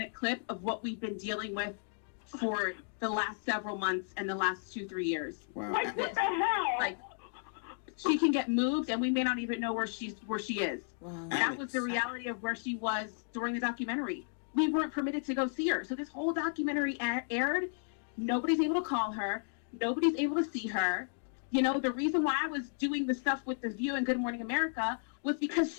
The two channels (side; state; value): right; silent; digital silence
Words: clip of what we've been dealing with for the last several months and the last 2-3 years. Wow. Like, what the hell? Like, she can get moved and we may not even know where she is. Wow. That was the reality of where she was during the documentary. We weren't permitted to go see her. So this whole documentary aired. Nobody's able to call her. Nobody's able to see her. You know, the reason why I was doing the stuff with The View and Good Morning America was because